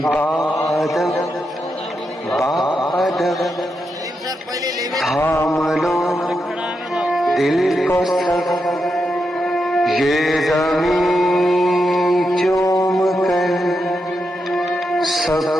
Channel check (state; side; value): normal; both; correlation 0.85